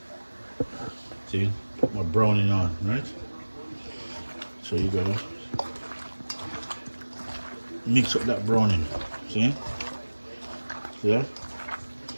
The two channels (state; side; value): inverted; both; correlation -1.00